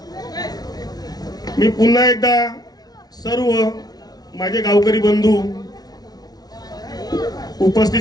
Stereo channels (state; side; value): late; right; 0.19 ms